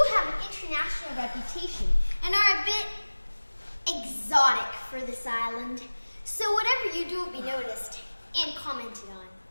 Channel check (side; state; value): both; inverted; correlation -1.00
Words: have an international reputation and are a bit exotic for this island. So whatever you do will be noticed and commented on.